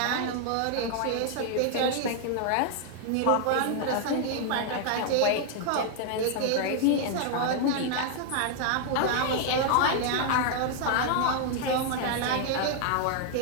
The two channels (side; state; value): both; different; correlation 0.00